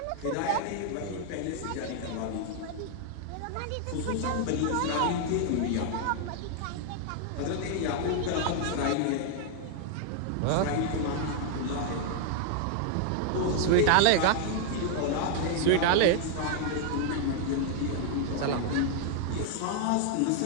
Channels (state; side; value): different; both; correlation 0.00